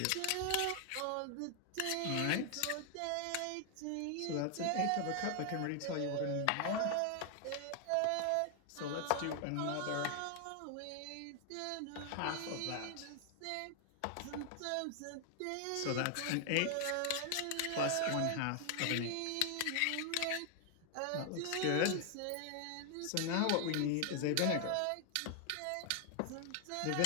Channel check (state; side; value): different; both; correlation 0.00